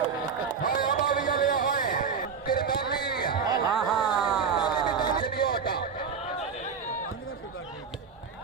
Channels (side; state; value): left; quieter; 6.0 dB